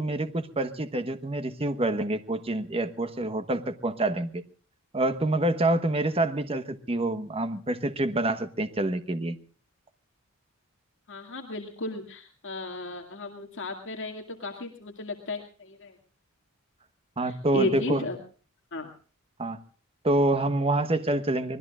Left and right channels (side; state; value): both; normal; correlation 0.49